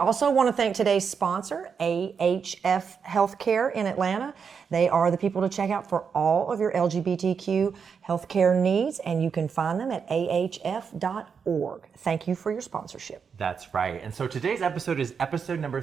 want to thank today's sponsor, AHF Healthcare in Atlanta. They are the people to check out for all of your LGBTQ healthcare needs, and you can find them at ahf.org. Thank you for your sponsorship. That's right. And so today's episode is episode number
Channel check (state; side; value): quieter; left; 6.3 dB